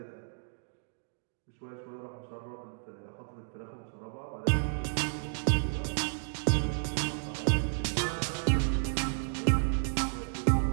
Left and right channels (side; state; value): left; silent; digital silence